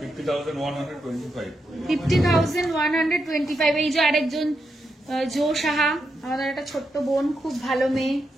50,125 50,125। এই যে আরেকজন জো সাহা, আমাদের একটা ছোট্ট বোন, খুব ভালো মেয়ে।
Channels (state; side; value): normal; both; correlation 0.84